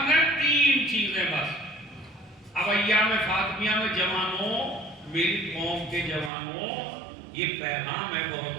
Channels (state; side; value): drops out; left; at 6.3 s